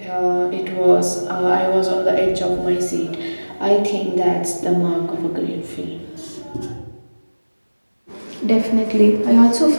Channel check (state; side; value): inverted; both; correlation -1.00